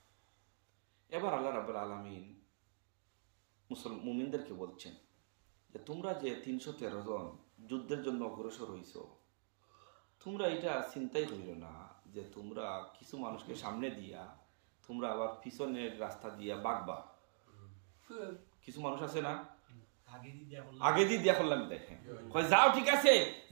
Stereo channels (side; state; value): left; silent; digital silence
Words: এবার আল্লাহ রাব্বুল আলামিন মুমিনদেরকে বলছেন যে তোমরা যে 313 জন যুদ্ধের জন্য অগ্রসর হইছো, তোমরা এটা চিন্তাই করিও না যে তোমরা কিছু মানুষকে সামনে দিয়া তোমরা আবার পিছনের রাস্তা দিয়া বাগবা। কিছু মানুষ আছে না, আগে দিয়ে দিয়া করলাম দেখেন কয় যাও ঠিক আছে